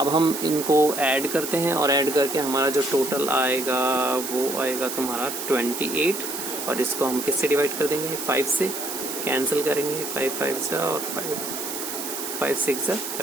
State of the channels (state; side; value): noise; right; hiss, 6 dB below the sound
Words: हम इनको ऐड करते हैं और ऐड करके हमारा जो टोटल आएगा वो आएगा तुम्हारा 28, और इसको हम किससे डिवाइड कर देंगे, 5 से कैंसिल करेंगे, 5 5 जा और 5 6 जा